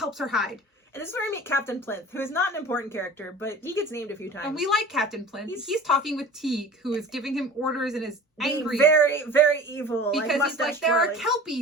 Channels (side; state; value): both; normal; correlation 0.41